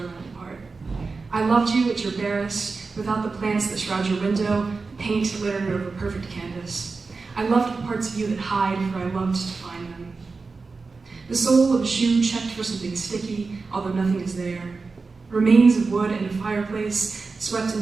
apart. I loved you at your barest, without the plants that shroud your window, paint littered over perfect canvas. I loved the parts of you that hide, for I loved to find them. The sole of a shoe checked for something sticky, although nothing is there. Remains of wood in a fireplace, swept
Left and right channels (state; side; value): quieter; left; 4.2 dB